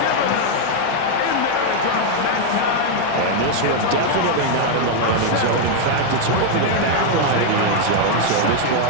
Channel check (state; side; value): different; both; correlation 0.00